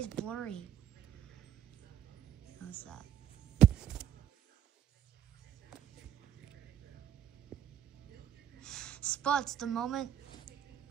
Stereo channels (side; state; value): left; quieter; 10.1 dB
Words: blurry? What's that? Spuds the moment